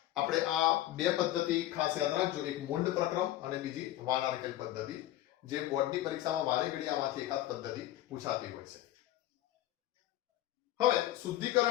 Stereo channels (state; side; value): quieter; right; 14.4 dB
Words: આપણે આ બે પદ્ધતિ ખાસ યાદ રાખજો, એક મુંડ પ્રક્રમ અને બીજી વાનાર્કેલ પદ્ધતિ, જે બોર્ડની પરીક્ષામાં વારે ઘડી આમાંથી એકાદ પદ્ધતિ પૂછાતી હોય છે. હવે